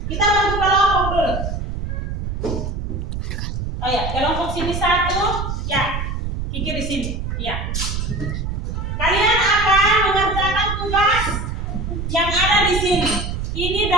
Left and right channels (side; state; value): right; noise; rumble, 3 dB below the sound